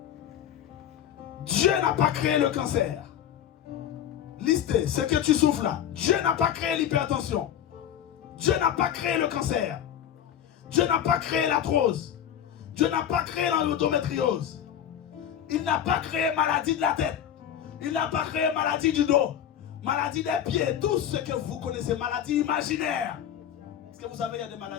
Dieu n'a pas créé le cancer. Listez ce que tu souffres là. Dieu n'a pas créé l'hypertension. Dieu n'a pas créé le cancer. Dieu n'a pas créé l'arthrose. Dieu n'a pas créé l'endométriose. Il n'a pas créé maladie de la tête. Il n'a pas créé maladie du dos. Maladie des pieds. Tout ce que vous connaissez, maladie imaginaire. Est-ce que vous savez, il y a des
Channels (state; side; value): quieter; right; 9.9 dB